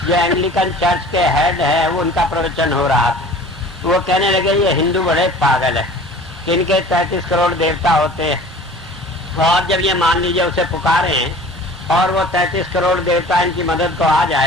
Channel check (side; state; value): both; normal; correlation 0.44